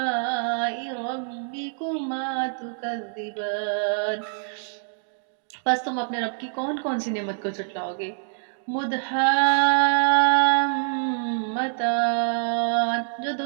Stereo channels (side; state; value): left; silent; digital silence